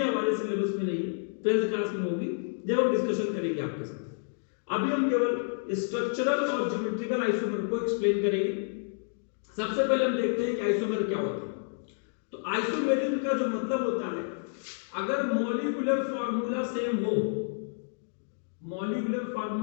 सिलेबस में नहीं है, 12th क्लास में होगी जब हम डिस्कशन करेंगे आपके साथ। अभी हम केवल स्ट्रक्चरल और ज्योमेट्रिकल आइसोमर को एक्सप्लेन करेंगे। सबसे पहले हम देखते हैं कि आइसोमर क्या होता है। तो आइसोमेरिज्म का जो मतलब होता है, अगर मॉलिक्यूलर फार्मूला सेम हो, मॉलिक्यूलर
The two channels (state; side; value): silent; right; digital silence